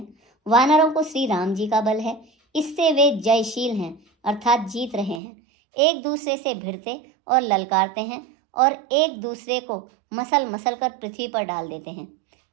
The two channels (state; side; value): drops out; left; at 5.2 s